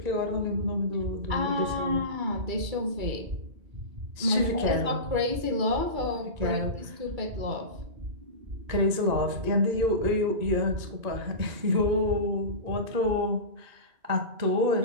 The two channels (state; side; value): late; left; 2.3 ms